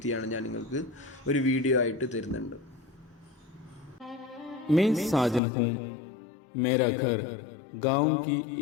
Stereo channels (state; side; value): drops out; right; at 5.4 s